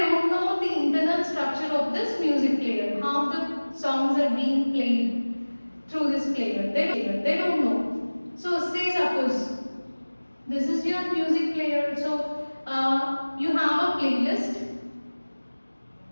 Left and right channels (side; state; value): both; inverted; correlation -1.00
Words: know the internal structure of this music player, how the songs are being played through this player. They don't know. So say suppose this is your music player. So you have a playlist